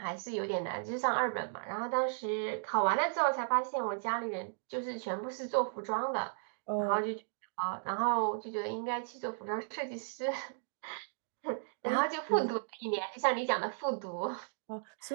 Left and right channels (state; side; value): silent; left; digital silence